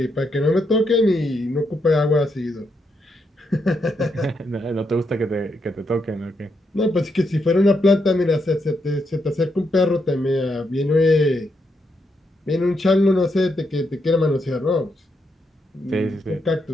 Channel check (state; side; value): normal; both; correlation 0.80